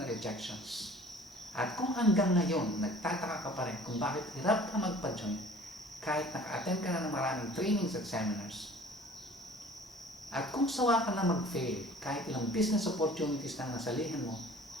rejections, at kung hanggang ngayon nagtataka ka pa rin kung bakit hirap ka magpa-join kahit naka-attend ka na ng maraming trainings at seminars, at kung sawa ka na mag-fail kahit ilang business opportunities na nasalihan mo,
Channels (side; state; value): both; normal; correlation 0.48